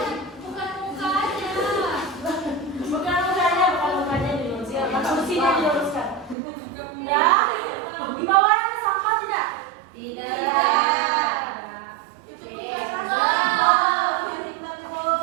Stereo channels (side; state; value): left; drops out; at 6.4 s